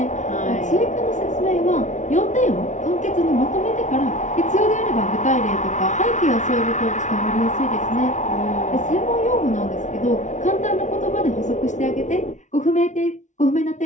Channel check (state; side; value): late; right; 0.36 ms